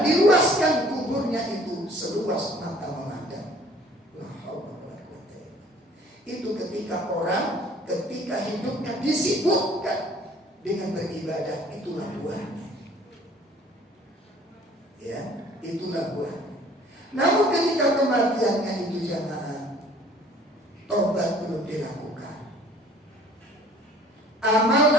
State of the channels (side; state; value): both; normal; correlation 0.53